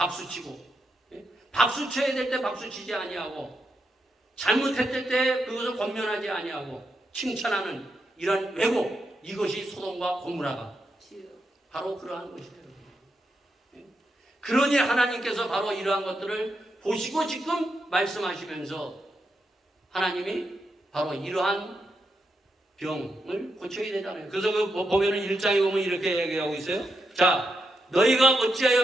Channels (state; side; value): normal; both; correlation 0.84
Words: 네? 박수 쳐야 될 때 박수 치지 아니하고 잘못했을 때 그것을 권면하지 아니하고 칭찬하는 이런 왜곡, 이것이 소돔과 고모라가 바로 그러한 것이에요. 그러니 하나님께서 바로 이러한 것들을 보시고 지금 말씀하시면서 하나님이 바로 이러한 병을 고쳐야 되잖아요. 그래서 그 보면은 1장에 보면 이렇게 얘기하고 있어요. 자, 너희가 어찌하여